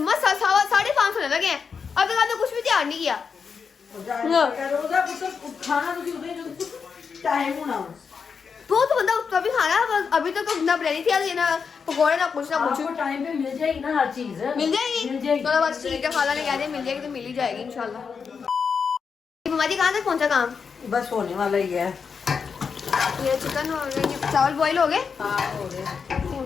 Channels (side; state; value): right; quieter; 5.9 dB